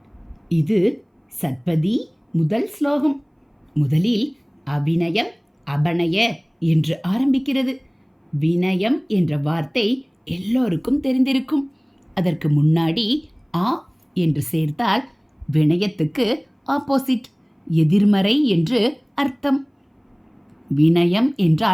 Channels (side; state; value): both; identical; correlation 1.00